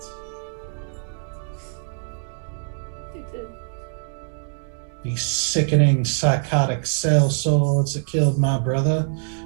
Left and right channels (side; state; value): left; silent; 63 dB below the other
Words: They did. These sickening psychotic cell swords that killed my brother